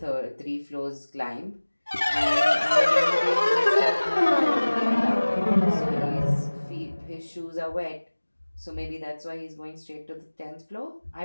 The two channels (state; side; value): inverted; both; correlation -1.00